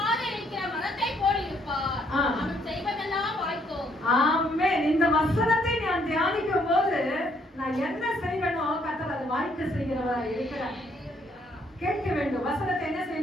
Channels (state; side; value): normal; both; correlation 0.69